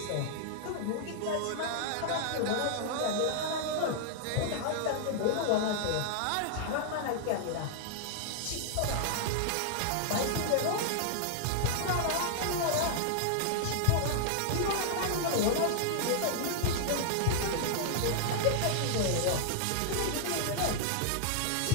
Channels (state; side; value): different; both; correlation -0.01